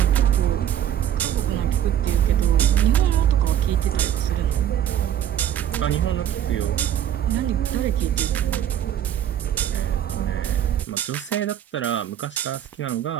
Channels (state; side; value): quieter; left; 10.4 dB